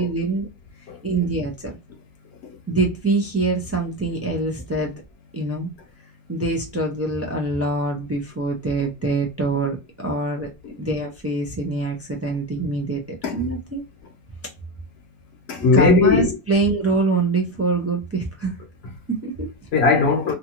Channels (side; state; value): both; normal; correlation 0.17